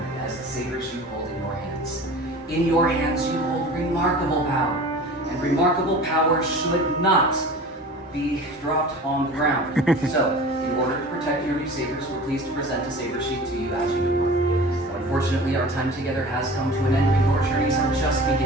as the sabers you hold in your hands. In your hands, you hold remarkable power. And remarkable power should not be dropped on the ground. So, in order to protect your new sabers, we're pleased to present a saber sheet to you as you depart. Unfortunately, our time together has come to an end, and your journeys are just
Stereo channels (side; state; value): both; normal; correlation 0.39